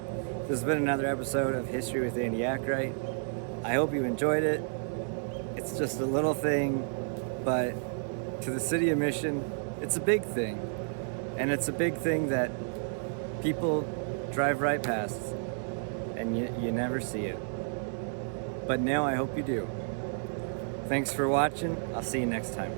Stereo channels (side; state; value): left; silent; 57 dB below the other